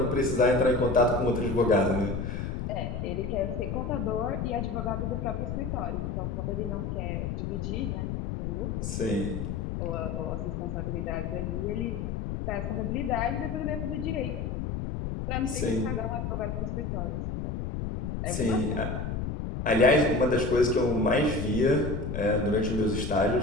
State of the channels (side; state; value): left; noise; rumble, 3 dB below the sound